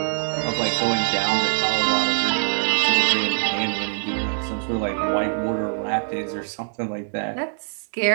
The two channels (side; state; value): left; silent; 63 dB below the other